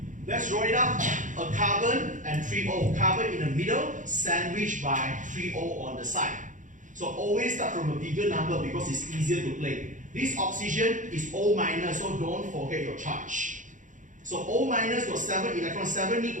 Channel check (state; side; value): late; left; 0.37 ms